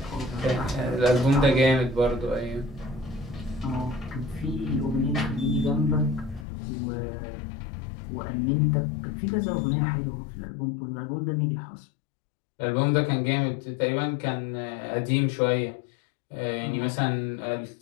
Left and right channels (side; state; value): right; drops out; at 6.5 s